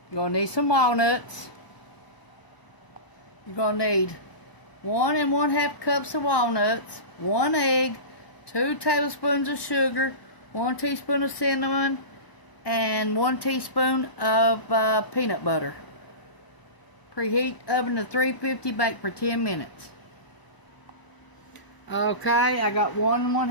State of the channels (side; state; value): right; late; 1.0 ms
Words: You're going to need some walnuts. You're going to need 1 1/2 cups of walnuts, 1 egg, 2 tablespoons of sugar, 1 teaspoon of cinnamon, and 1 teaspoon of peanut butter. Preheat oven to 350, bake for 10 minutes. Okay, I got 1